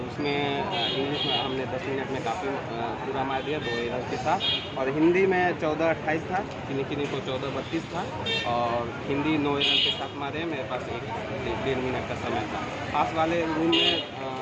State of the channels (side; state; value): both; identical; correlation 1.00